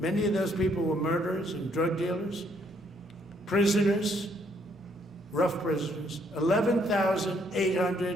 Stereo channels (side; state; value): both; normal; correlation 0.69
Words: Many of those people were murderers and drug dealers, prisoners, rough prisoners,